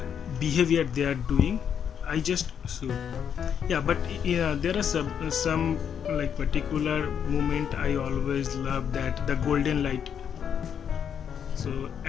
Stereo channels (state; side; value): quieter; right; 8.1 dB